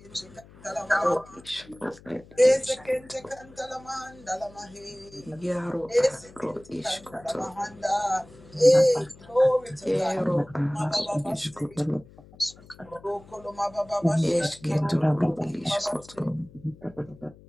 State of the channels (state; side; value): noise; left; hum, 23 dB below the sound